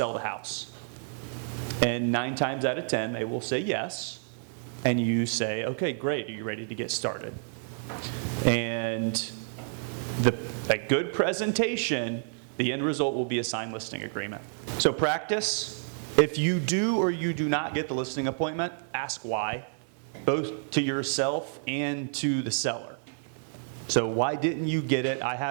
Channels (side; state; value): left; silent; digital silence